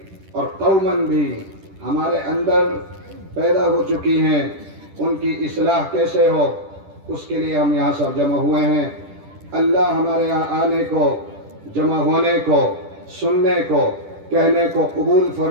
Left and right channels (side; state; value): left; late; 10 ms